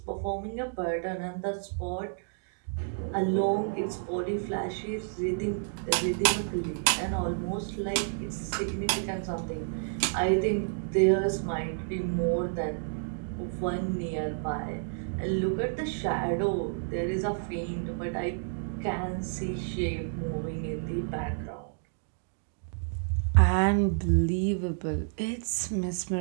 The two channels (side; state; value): left; silent; digital silence